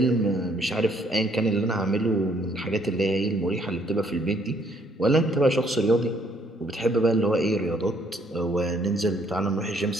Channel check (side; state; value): both; normal; correlation 0.66